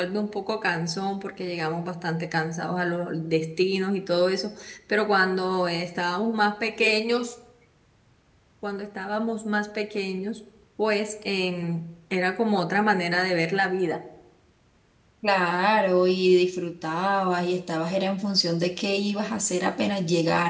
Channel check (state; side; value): identical; both; correlation 1.00